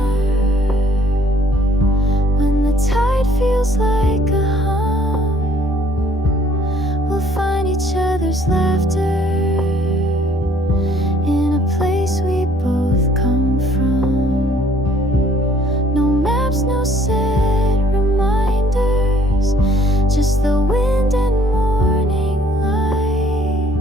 when the tide feels like a hum, we'll find each other's laughter in a place we both come from. No maps, no set reminders, just the wind and morning light.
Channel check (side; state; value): both; normal; correlation 0.61